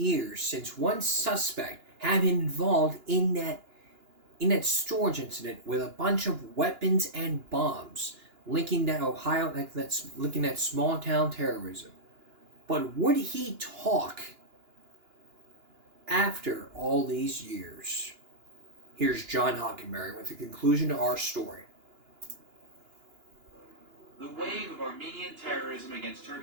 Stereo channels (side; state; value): left; late; 2.9 ms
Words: since one suspect had been involved in that storage incident with a bunch of weapons and bombs linking that linking that small town terrorism. But would he talk after all these years? Here's John Hockenberry with the conclusion to our story. The wave of Armenian terrorism against